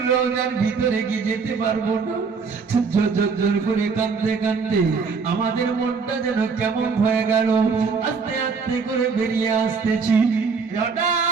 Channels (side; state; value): left; quieter; 5.1 dB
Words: রওজার ভিতরে কি যেতে পারবো না। ঝরঝর করে কাঁদতে কাঁদতে আমাদের মনটা যেন কেমন হয়ে গেল। আস্তে আস্তে করে বেরিয়ে আসতেছি,